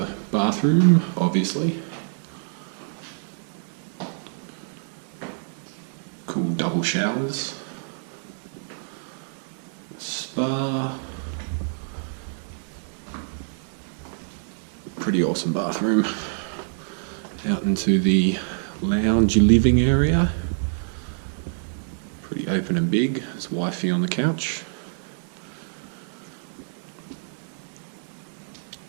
bathroom, obviously. Cool double showers. Spa. Pretty awesome bathroom. Out into the lounge living area. Pretty open and big. There's wifey on the couch.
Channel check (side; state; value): left; silent; digital silence